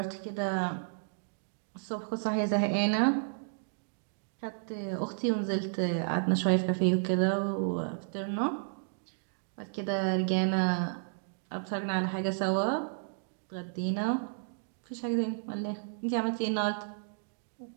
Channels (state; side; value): silent; left; digital silence